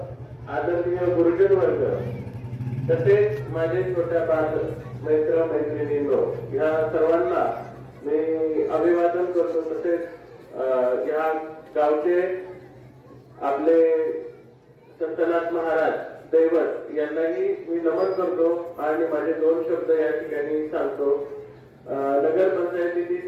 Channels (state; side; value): identical; both; correlation 1.00